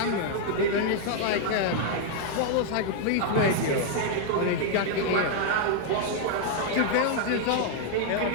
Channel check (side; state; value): both; different; correlation 0.00